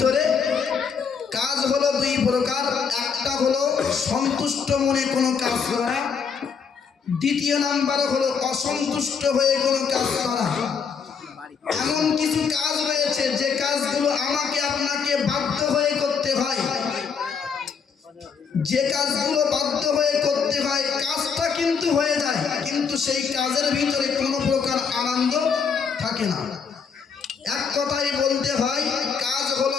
কাজ হলো দুই প্রকার। একটা হলো সন্তুষ্ট মনে কোনো কাজ করা, দ্বিতীয় নাম্বার হলো অসন্তুষ্ট হয়ে কোনো কাজ করা। এমন কিছু কাজ রয়েছে যে কাজগুলো আমাকে আপনাকে বাধ্য হয়ে করতে হয়, যে কাজগুলো বাধ্য হয়ে করতে হয় কাজটা কিন্তু হয়ে যায়, কিন্তু সেই কাজের ভিতরে কোনো প্রকার আনন্দ থাকে না। এক কথাই বলতে হয় কাজ হলো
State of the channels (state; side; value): quieter; right; 6.1 dB